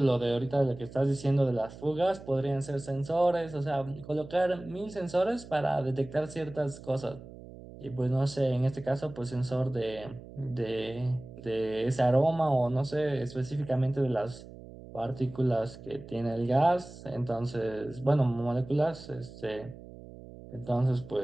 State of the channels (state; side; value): noise; right; hum, 16 dB below the sound